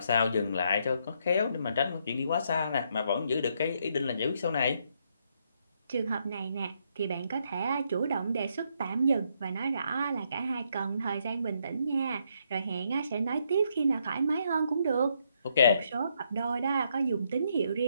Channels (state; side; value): inverted; both; correlation -0.75